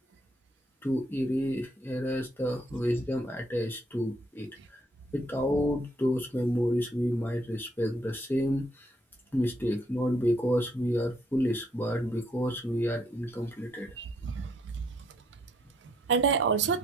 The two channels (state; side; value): normal; both; correlation 0.70